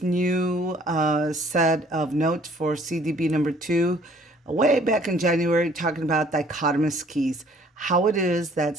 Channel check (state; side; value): normal; both; correlation 0.58